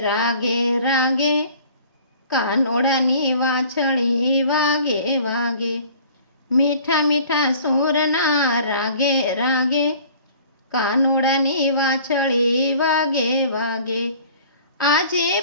रागे, कानोड़ानी वाछड़ी वागे वागे। मीठा मीठा सूर ना रागे रागे, कानोड़ानी वाछड़ी वागे वागे। आजे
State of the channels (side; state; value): both; inverted; correlation -0.49